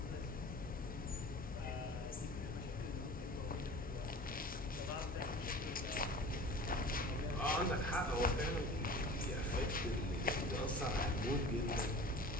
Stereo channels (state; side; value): normal; both; correlation 0.40